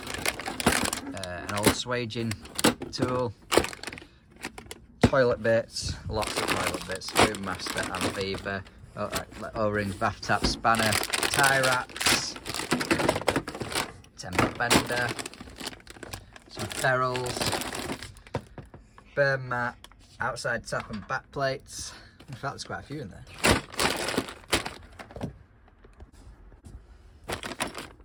an old swaging tool, toilet bits, lots of toilet bits, Boom Master and Beaver, O-rings, bath tap, spanner, tie wraps, temper bender, some ferrules, burn mat, outside tap and back plates. In fact, there's quite a few in there.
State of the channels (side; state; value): both; identical; correlation 1.00